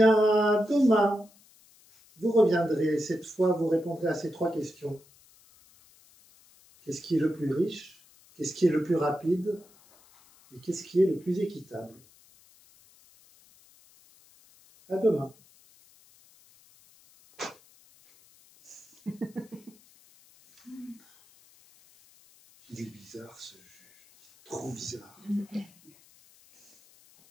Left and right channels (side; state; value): left; noise; hiss, 28 dB below the sound